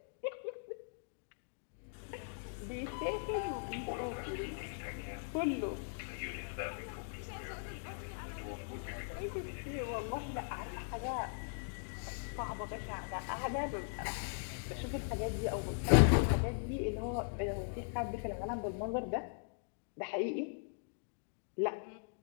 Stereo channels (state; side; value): silent; right; digital silence